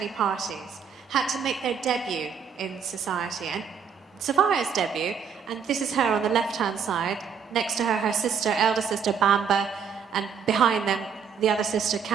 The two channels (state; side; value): quieter; left; 6.9 dB